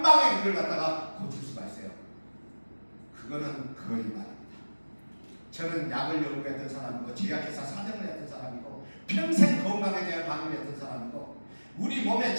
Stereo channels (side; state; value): both; inverted; correlation -1.00